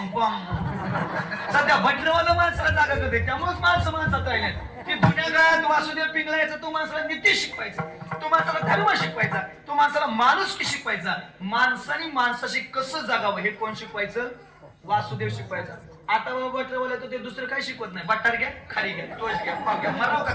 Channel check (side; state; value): both; identical; correlation 1.00